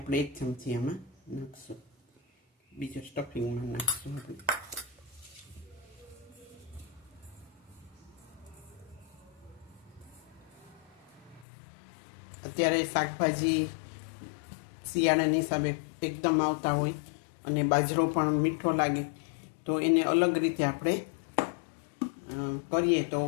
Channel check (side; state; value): right; drops out; at 11.5 s